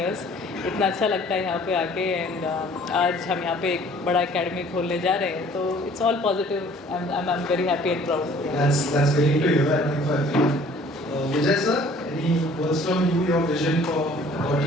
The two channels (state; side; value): normal; both; correlation 0.54